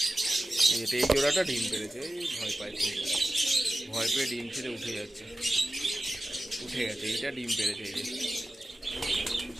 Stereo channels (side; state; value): both; normal; correlation 0.94